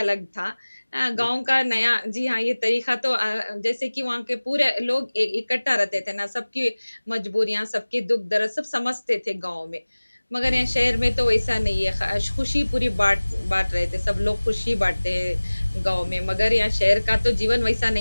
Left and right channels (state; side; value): inverted; both; correlation -1.00